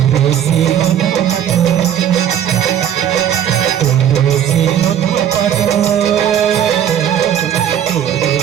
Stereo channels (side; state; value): left; quieter; 9.8 dB